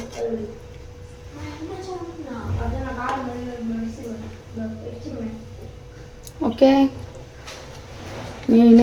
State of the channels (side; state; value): both; identical; correlation 1.00